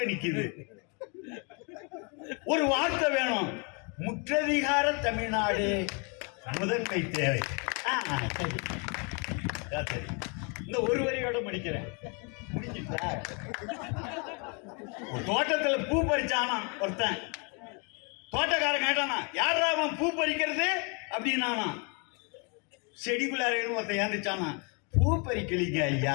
நிக்குது. ஒரு வார்த்தை வேணும், முற்றதிகார தமிழ்நாடு முதன்மை தேவை. இந்த ஒரு வரியோட முடிக்கிறேன். தோட்டத்துல பூ பறிச்சானா ஒருத்தன், தோட்டக்காரன் கேட்டானா, யாரா அவன் பூ பறிக்கிறது அப்படின்னானா. செடிக்குள்ளார ஒருத்தன் ஏந்துச்சானா, பூ பறிக்கலீங்க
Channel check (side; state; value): right; quieter; 34.4 dB